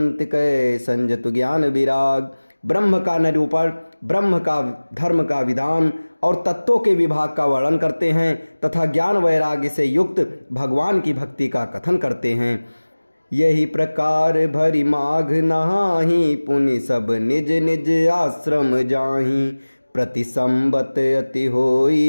कै संजतु ज्ञान विराग। ब्रह्म का निरूपण, ब्रह्म का धर्म का विधान और तत्वों के विभाग का वर्णन करते हैं तथा ज्ञान वैराग्य से युक्त भगवान की भक्ति का कथन करते हैं। यही प्रकार भरी माघ नहाही, पुनि सब निज निज आश्रम जाही। प्रति संबत अति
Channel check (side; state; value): both; inverted; correlation -1.00